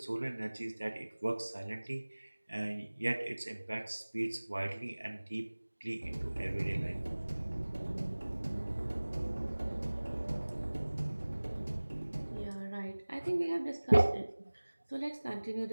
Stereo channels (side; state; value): both; inverted; correlation -1.00